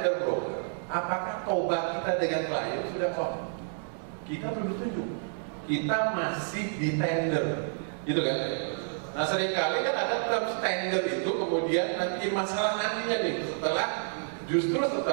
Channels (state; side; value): silent; left; 58 dB below the other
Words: broker, apakah TOBA kita dengan klien sudah firm? Kita belum setuju. Kita masih di tender, gitu kan? Nah seringkali kan ada terms tender itu kemudian nanti masalah nantinya nih justru